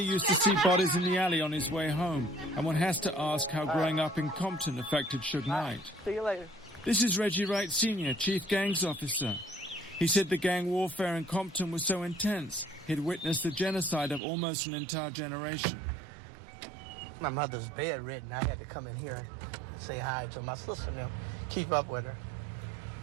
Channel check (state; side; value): drops out; left; at 14.2 s